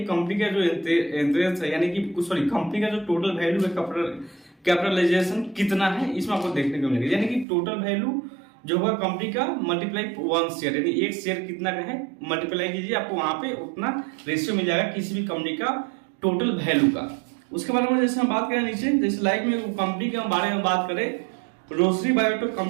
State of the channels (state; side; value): drops out; left; at 7.5 s